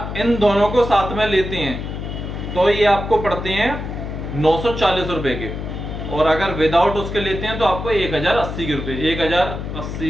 इन दोनों को साथ में लेते हैं तो ये आपको पड़ते हैं 940 रुपए के, और अगर विदाउट उसके लेते हैं तो आपको 1080 के रुपए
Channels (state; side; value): noise; left; hum, 6 dB below the sound